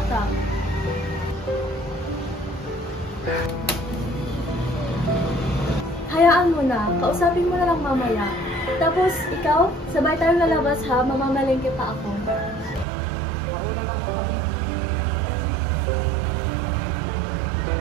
Hayaan mo na, kausapin mo na lang mamaya. Tapos ikaw, sabay tayong lalabas ha, mamamalengke pa ako. Ako naman po kami.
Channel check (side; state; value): left; drops out; at 12.9 s